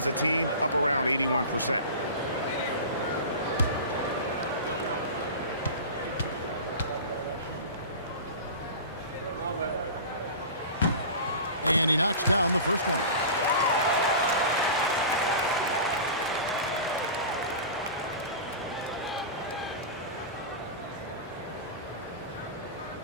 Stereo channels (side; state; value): both; inverted; correlation -0.33